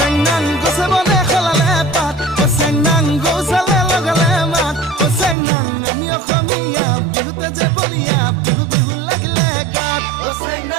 নাং গছে বনে খলালে পাত চেং নাং গৌচালে লগালে মাত চেং নাং আমি অসমীয়া বিহুতে যে বলিয়া বিহু বিহু লাগিলে গাত চেং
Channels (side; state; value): left; drops out; at 5.4 s